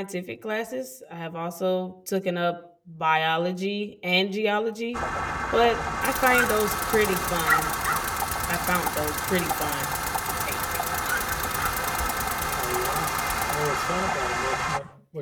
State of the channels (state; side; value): identical; both; correlation 1.00